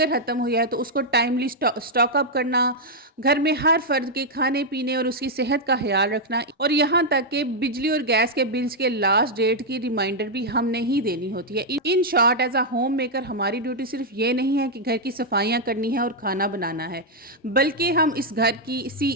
ख़त्म हुई है तो उसको टाइमली स्टॉक अप करना, घर में हर फर्द के खाने पीने और उसकी सेहत का ख्याल रखना, और यहाँ तक कि बिजली और गैस के बिल्स के लास्ट डेट की रिमाइंडर भी हमने ही देनी होती है। In short, as a home maker हमारी ड्यूटी सिर्फ ये नहीं है कि घर की सफाइयाँ करनी है और खाना बनाना है, बल्कि हम इस घर की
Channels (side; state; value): both; normal; correlation -0.02